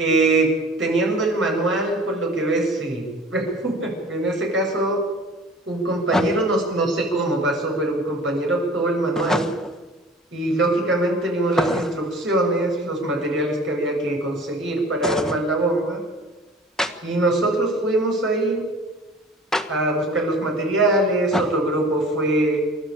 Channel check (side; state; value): both; normal; correlation 0.45